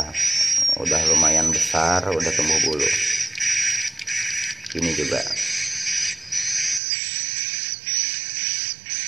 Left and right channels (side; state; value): left; drops out; at 6.8 s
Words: lumayan besar, udah tumbuh bulu. Ini juga.